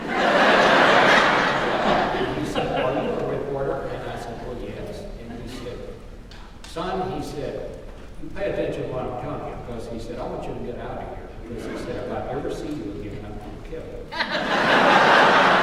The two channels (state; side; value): identical; both; correlation 1.00